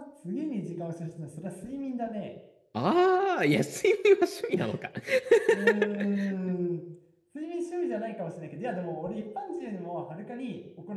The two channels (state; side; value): identical; both; correlation 1.00